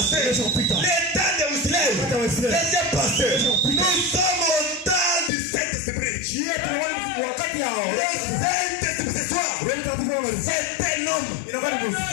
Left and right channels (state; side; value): drops out; right; at 5.3 s